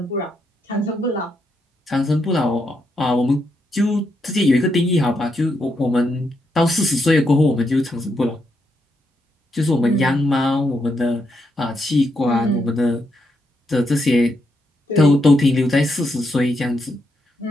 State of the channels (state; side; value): normal; both; correlation 0.80